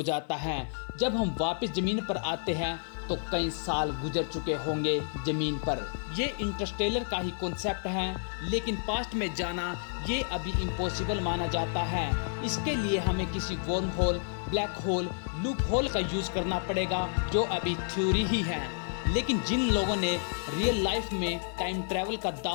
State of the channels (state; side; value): silent; right; digital silence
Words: जाता है। जब हम वापस ज़मीन पर आते हैं तो कई साल गुजर चुके होंगे ज़मीन पर। ये इंटरस्टेलर का ही कॉन्सेप्ट है, लेकिन पास्ट में जाना ये अभी इम्पॉसिबल माना जाता है। इसके लिए हमें किसी worm hole, black hole, loop hole का यूज़ करना पड़ेगा, जो अभी थ्योरी ही है। लेकिन जिन लोगों ने रियल लाइफ में टाइम ट्रैवल का